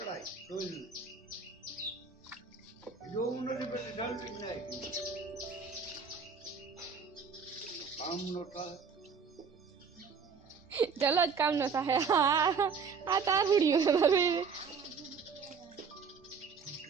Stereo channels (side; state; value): left; quieter; 5.6 dB